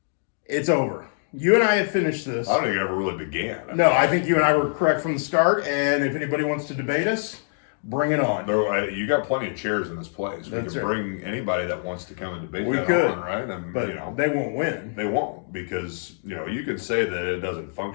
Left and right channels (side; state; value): right; silent; digital silence